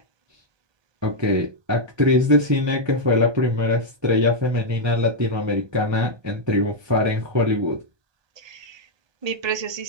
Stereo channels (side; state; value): left; late; 1.2 ms